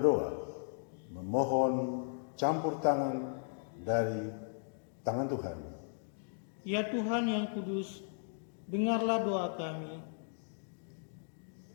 memohon campur tangan dari tangan Tuhan. Ya Tuhan yang kudus, dengarlah doa kami.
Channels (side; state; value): right; silent; digital silence